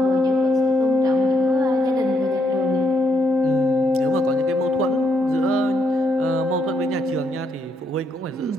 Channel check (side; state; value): both; normal; correlation 0.76